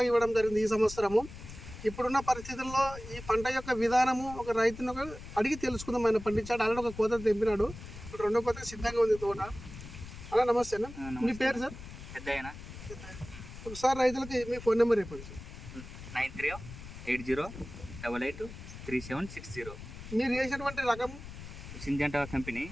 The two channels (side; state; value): left; noise; rumble, 13 dB below the sound